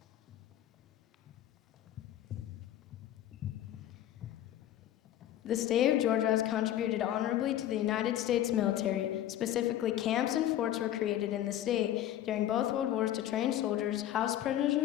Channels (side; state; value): right; quieter; 12.3 dB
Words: The state of Georgia has contributed honorably to the United States military. Specifically, camps and forts were created in the state during both World Wars to train soldiers, house